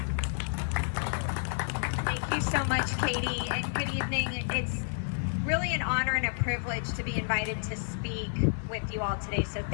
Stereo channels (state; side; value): silent; right; digital silence